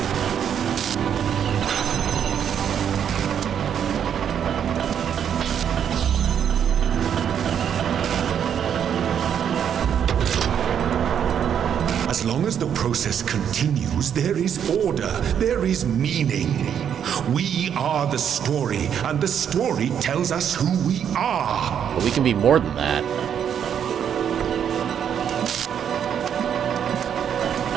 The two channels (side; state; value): left; quieter; 8.6 dB